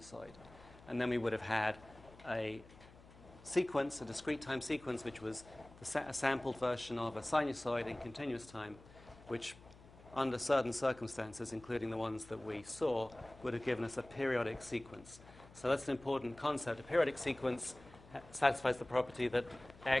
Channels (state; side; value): noise; left; hum, 21 dB below the sound